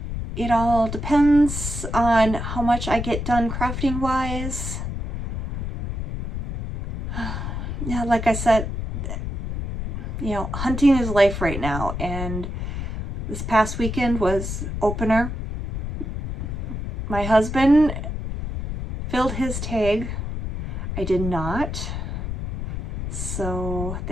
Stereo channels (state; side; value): noise; left; rumble, 5 dB below the sound